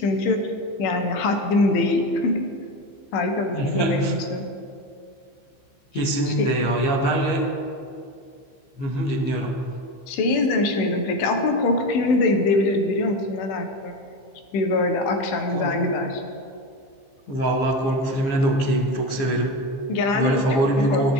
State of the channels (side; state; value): right; late; 15 ms